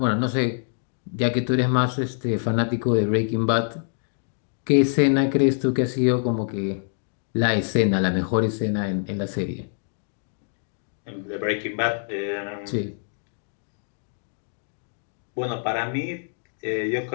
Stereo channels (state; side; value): silent; right; digital silence